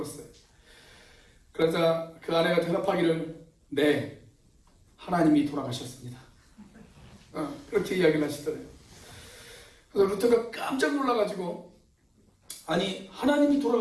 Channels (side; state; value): both; identical; correlation 1.00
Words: 그러자 그 아내가 대답하기를 네, 하나님이 돌아가셨습니다. 그렇게 이야기를 하시더래요. 그래서 루터가 깜짝 놀라가지고 아니 하나님이